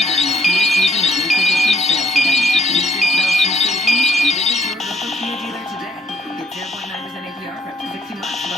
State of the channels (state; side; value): normal; both; correlation 0.68